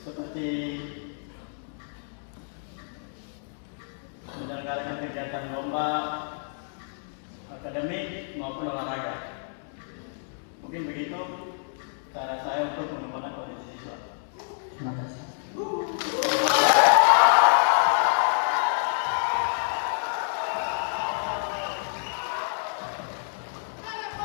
seperti menyelenggarakan kegiatan lomba akademik maupun olahraga. Mungkin begitu cara saya untuk mengembangkan potensi siswa. Terima kasih.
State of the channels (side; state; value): right; silent; digital silence